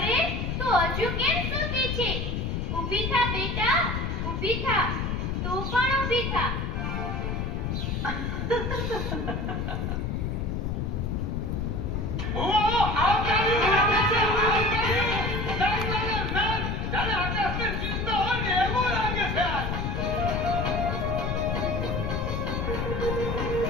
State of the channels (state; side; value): noise; left; rumble, 1 dB below the sound